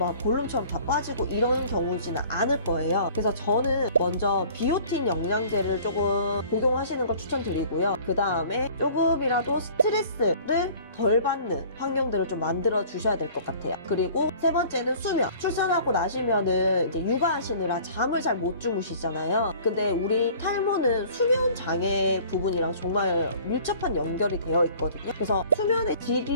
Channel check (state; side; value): inverted; both; correlation -0.49